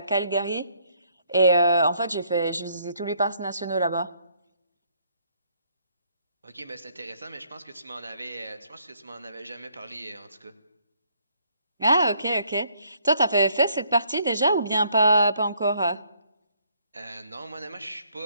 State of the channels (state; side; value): inverted; both; correlation -0.67